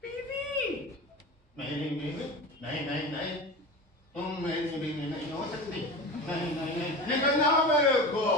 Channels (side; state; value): both; normal; correlation 0.29